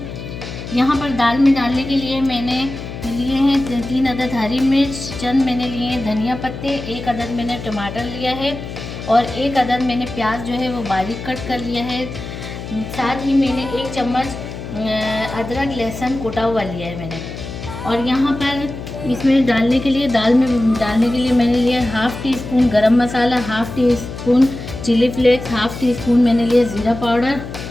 यहाँ पर दाल में डालने के लिए मैंने लिए हैं 3 अदद हरी मिर्च, चंद मैंने लिए हैं धनिया पत्ते, 1 अदद मैंने टमाटर लिया है और 1 अदद मैंने प्याज जो है वो बारीक कट कर लिया है। साथ ही मैंने 1 चम्मच अदरक लहसुन कुटा हुआ लिया है मैंने। और यहाँ पर इसमें डालने के लिए दाल में डालने के लिए मैंने लिया 1/2 teaspoon garam masala, 1/2 teaspoon chilli flakes, 1/2 teaspoon मैंने लिया ज़ीरा पाउडर,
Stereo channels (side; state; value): left; noise; hum, 10 dB below the sound